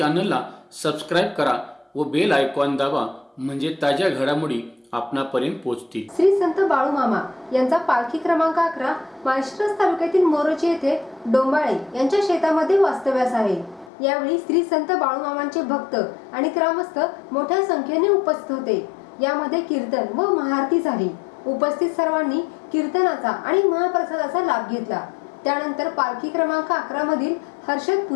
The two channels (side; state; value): right; drops out; at 13.9 s